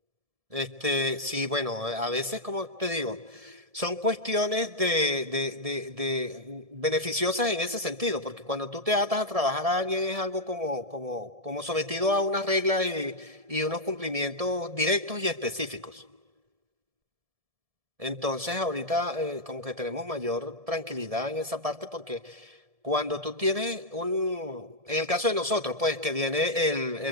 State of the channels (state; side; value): late; left; 1.7 ms